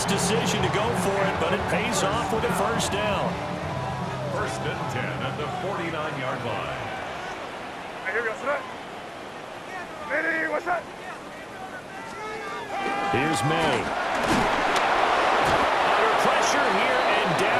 decision to go for it, but it pays off with a first down. First and 10 at the 49-yard line. Here's May. Under pressure here, and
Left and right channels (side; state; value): both; identical; correlation 1.00